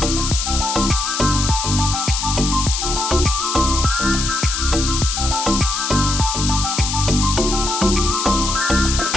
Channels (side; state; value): left; noise; hiss, 2 dB below the sound